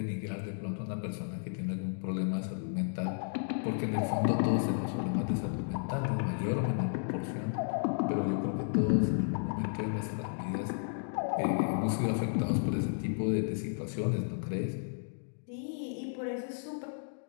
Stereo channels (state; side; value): silent; right; digital silence